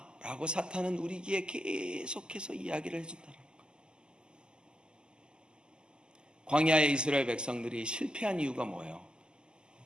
라고 사탄은 우리 귀에 계속해서 이야기를 해준다는 거예요. 광야의 이스라엘 백성들이 실패한 이유가 뭐예요?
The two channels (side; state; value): left; late; 0.047 ms